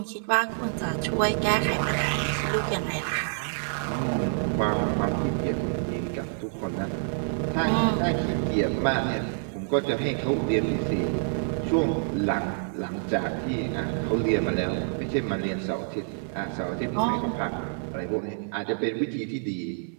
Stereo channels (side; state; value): left; silent; digital silence